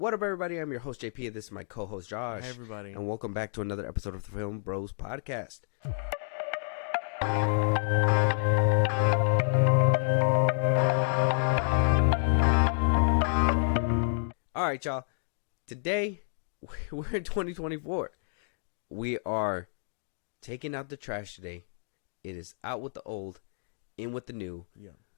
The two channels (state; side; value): silent; right; digital silence